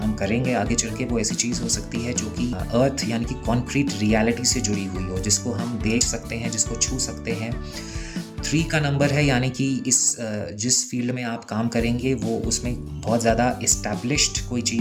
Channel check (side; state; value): both; identical; correlation 1.00